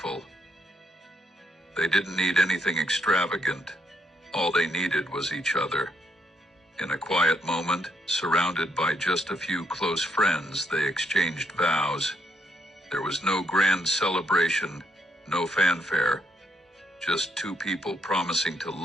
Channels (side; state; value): both; normal; correlation 0.75